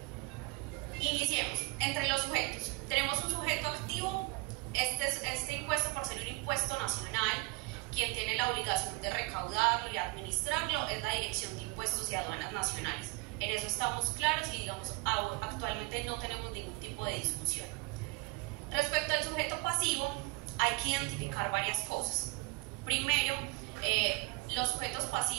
Iniciemos. Entre los sujetos tenemos un sujeto activo. Este impuesto, por ser un impuesto nacional, quien tiene la obligación de recaudarlo y administrarlo es la Dirección de Impuestos y Aduanas Nacionales. En eso estamos claros y, digamos, actualmente no tenemos ningún tipo de discusión. Respecto al sujeto pasivo, hay que identificar varias cosas. Primero, los sujetos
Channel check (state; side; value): quieter; left; 23.6 dB